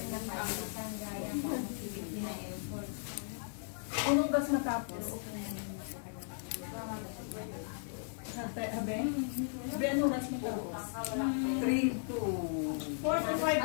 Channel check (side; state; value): right; silent; digital silence